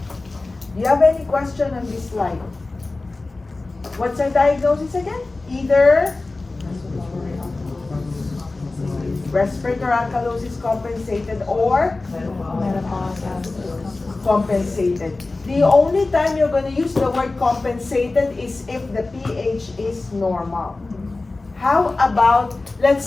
Do you have any question on this slide? What's our diagnosis again? Either respiratory alkalosis compensated or compensated. The only time you're going to use the word compensated is if the pH is normal. How about,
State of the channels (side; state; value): right; quieter; 3.3 dB